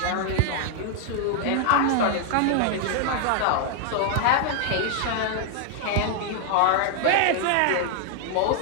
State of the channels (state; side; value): different; both; correlation 0.00